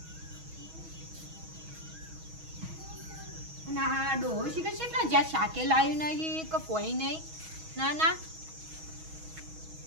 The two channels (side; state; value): left; late; 6.2 ms